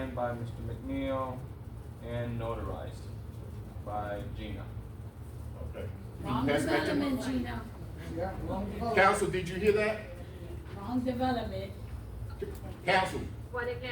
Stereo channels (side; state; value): both; identical; correlation 1.00